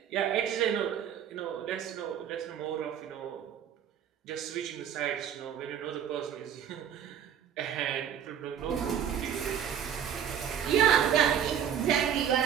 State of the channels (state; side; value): quieter; left; 9.1 dB